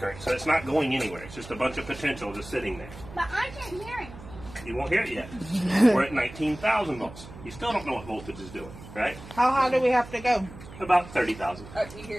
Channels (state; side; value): noise; right; hum, 16 dB below the sound